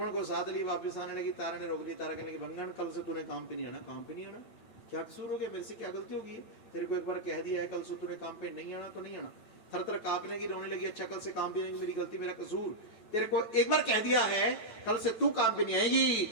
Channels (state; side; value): late; right; 8.7 ms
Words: को साथ ली, वापिस आने लगी। तारा ने रोक ली। तारा कहने लगी, भंगन कल से तूने काम पे नहीं आना। काम पे नहीं आना? क्या कसूर हो गया? मेरे से क्या गलती होगी? तेरे को एक बार कह दिया है, कल से तूने काम पे नहीं आना तो नहीं आना। थर थर कांपने की, रोने लगी। अच्छा कल से काम पे नहीं, मेरी गलती, मेरा कसूर। तेरे को एक बार कह दिया है, कल से तू काम पे नहीं आएगी,